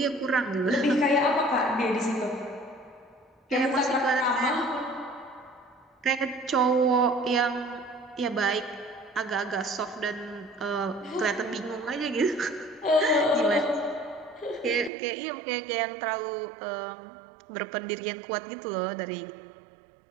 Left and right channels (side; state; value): left; drops out; at 14.9 s